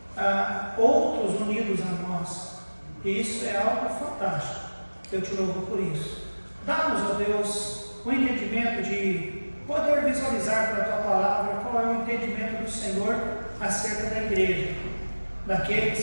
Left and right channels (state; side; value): inverted; both; correlation -1.00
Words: outros unidos a nós. E isso é algo fantástico. Eu te louvo por isso. Dá-nos, ó Deus, o entendimento de poder visualizar pela Tua palavra qual é o entendimento do Senhor acerca da igreja,